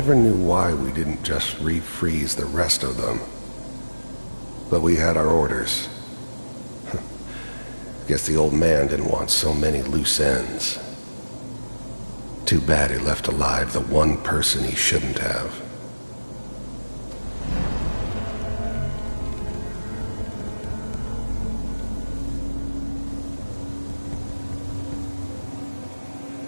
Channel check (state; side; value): inverted; both; correlation -1.00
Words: knew why we didn't just refreeze the rest of them. But we had our orders. Guess the old man didn't want so many loose ends. Too bad he left alive the one person he shouldn't have.